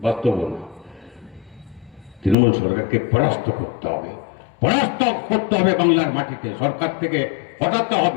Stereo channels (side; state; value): right; drops out; at 2.4 s